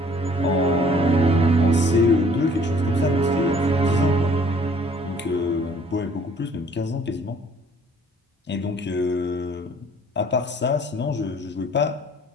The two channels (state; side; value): normal; both; correlation 0.57